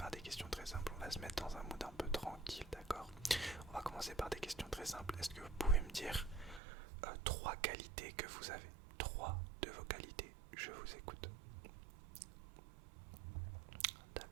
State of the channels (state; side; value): drops out; left; at 6.6 s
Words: des questions très simples, on va se mettre dans un mood un peu tranquille, d'accord? On va commencer par des questions très simples. Est-ce que vous pouvez me dire 3 qualités que vous avez? 3 de vos qualités, je vous écoute.